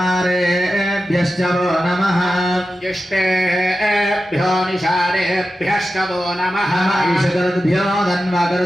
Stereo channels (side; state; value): both; normal; correlation 0.92